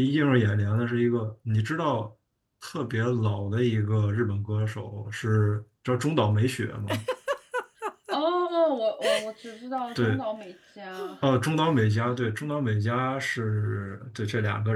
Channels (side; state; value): both; identical; correlation 1.00